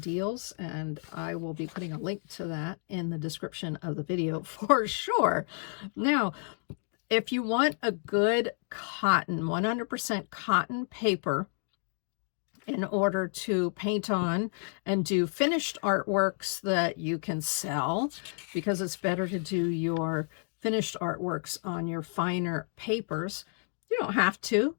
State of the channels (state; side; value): silent; right; 57 dB below the other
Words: and I will be putting a link to that in the description of the video for sure. Now, if you want a good cotton, 100% cotton paper, in order to paint on and do finished artworks that you can sell, because it's better to do your finished artworks on your finer papers. You don't have to,